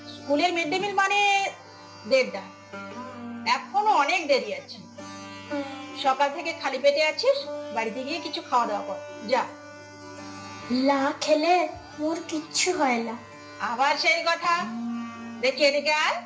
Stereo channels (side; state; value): both; identical; correlation 1.00